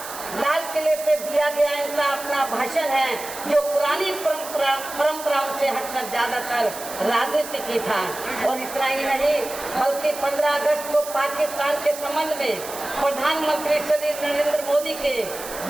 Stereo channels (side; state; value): right; noise; hiss, 11 dB below the sound